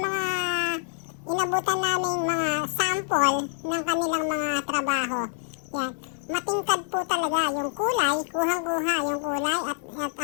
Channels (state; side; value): silent; right; digital silence